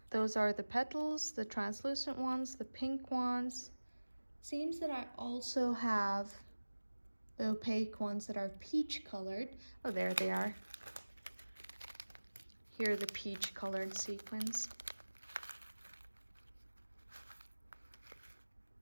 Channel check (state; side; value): inverted; both; correlation -1.00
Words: Those are the petals, the translucent ones, the pink ones. Seems that I also have the opaque ones that are peach colored. Oh, there they are. Here are the peach colored sequins.